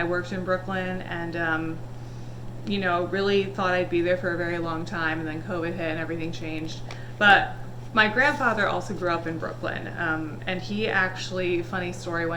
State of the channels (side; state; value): both; identical; correlation 1.00